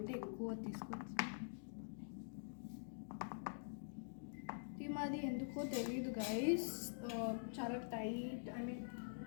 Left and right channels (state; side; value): silent; right; digital silence